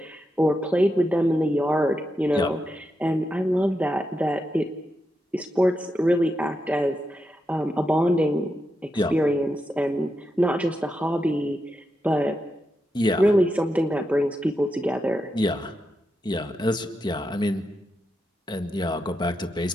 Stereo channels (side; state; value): both; normal; correlation 0.86